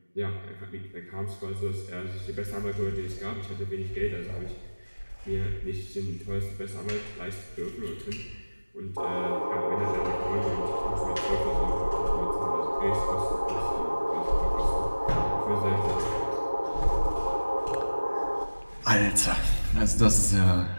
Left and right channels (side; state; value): both; inverted; correlation -1.00